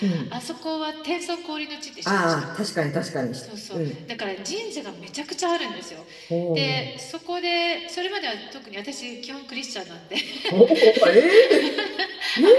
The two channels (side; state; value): both; identical; correlation 1.00